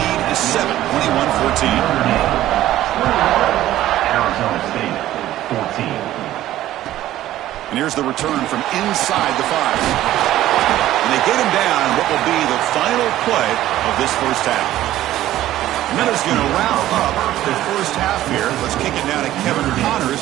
is 7, 21-14. Arizona State, 14. And here's the return from inside the 5. And they get him down what will be the final play of this first half. Miller's going to wrap up the first half here. Let's kick it down to Kevin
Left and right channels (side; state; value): left; quieter; 14.0 dB